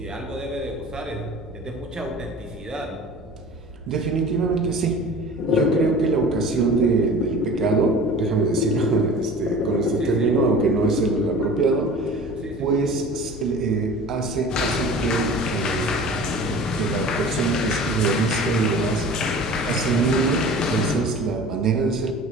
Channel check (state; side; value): normal; both; correlation 0.41